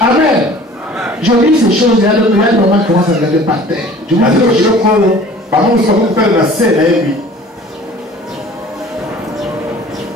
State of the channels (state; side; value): normal; both; correlation 0.47